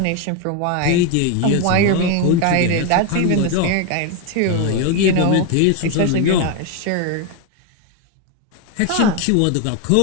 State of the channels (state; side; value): different; both; correlation 0.02